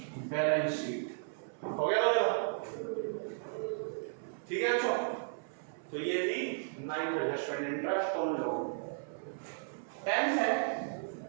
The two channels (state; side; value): silent; left; 55 dB below the other